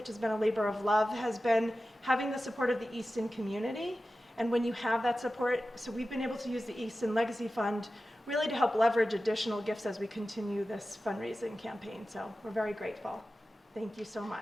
has been a labor of love, has been having the support of the Easton community. And when you have that support, so we've been able to use the Easton Legacy Fund really to help leverage additional gifts as we continue this fundraising campaign. So we're very grateful. Thank you so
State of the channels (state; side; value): normal; both; correlation 0.94